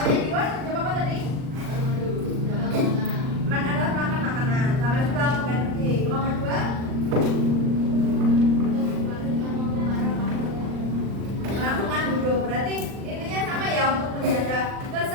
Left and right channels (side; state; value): left; late; 39 ms